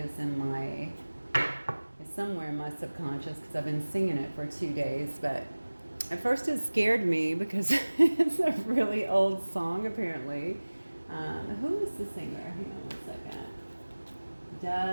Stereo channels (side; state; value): both; inverted; correlation -1.00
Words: in my, it's somewhere in my subconscious because I've been singing it for 2 days, but at first it scared me because it's a really old song apparently. Who is the singer? Hang on one second.